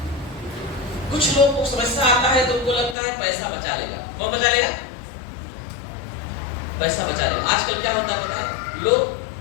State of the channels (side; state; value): right; drops out; at 3.0 s